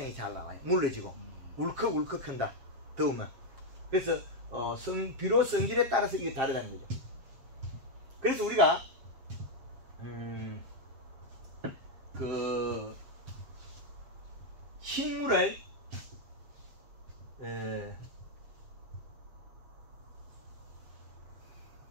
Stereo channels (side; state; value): left; late; 7.6 ms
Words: 잘 나와요. 물러지고 울컥울컥 큰다. 더우면. 그래서 비료 성질에 따라서 이게 다르다는 거죠. 그래서 우리가 그 식물을